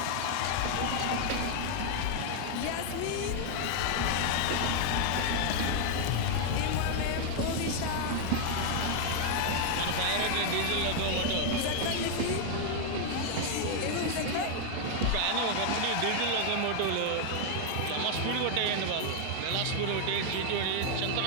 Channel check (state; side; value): different; both; correlation 0.00